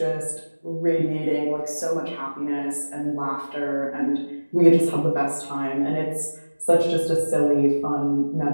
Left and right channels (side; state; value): both; inverted; correlation -1.00